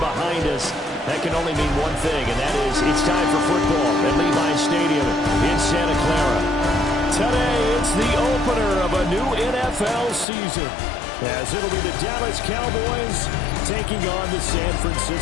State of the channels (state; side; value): drops out; right; at 10.2 s